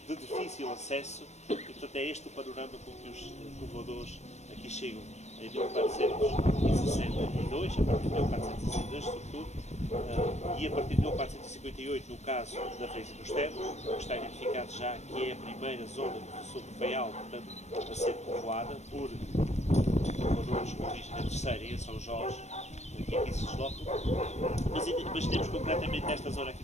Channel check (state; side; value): late; right; 0.32 ms